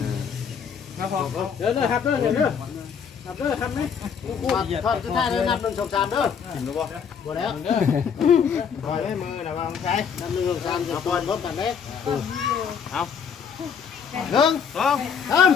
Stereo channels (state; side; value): quieter; right; 7.0 dB